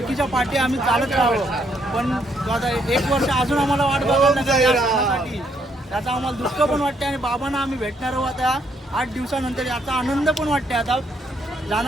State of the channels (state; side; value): normal; both; correlation 0.72